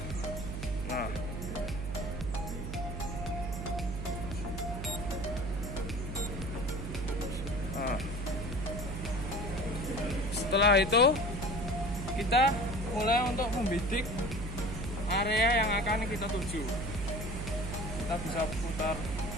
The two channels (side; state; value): right; noise; hum, 5 dB below the sound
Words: Setelah itu kita mulai untuk membidik area yang akan kita tuju. Kita bisa putar.